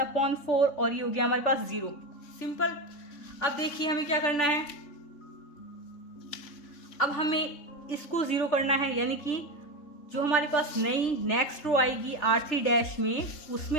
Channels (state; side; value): late; right; 3.7 ms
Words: और ये हो गया हमारे पास 0। सिंपल। अब देखिए हमें क्या करना है, अब हमें इसको 0 करना है, यानी कि जो हमारे पास नई नेक्स्ट रो आएगी R3 डैश में,